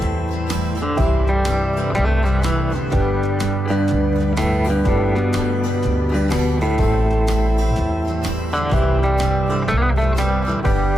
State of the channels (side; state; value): both; normal; correlation 0.88